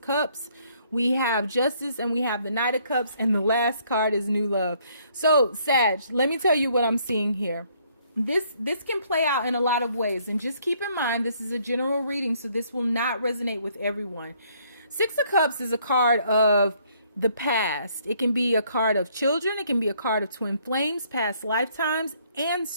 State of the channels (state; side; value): inverted; both; correlation -0.65